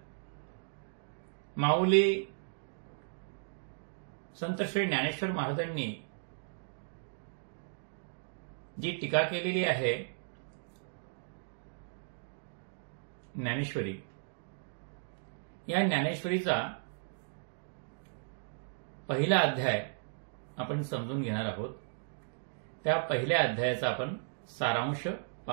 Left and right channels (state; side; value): silent; left; digital silence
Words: माऊली संत श्री ज्ञानेश्वर महाराजांनी जी टीका केलेली आहे ज्ञानेश्वरी, या ज्ञानेश्वरीचा पहिला अध्याय आपण समजून घेणार आहोत. त्या पहिल्या अध्यायाचा आपण सारांश